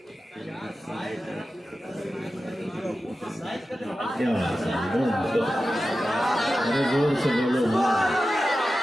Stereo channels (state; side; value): normal; both; correlation 0.93